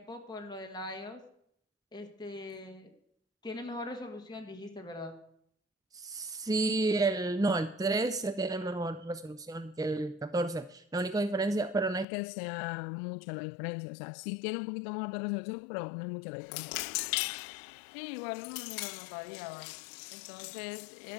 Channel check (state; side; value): drops out; right; at 12.1 s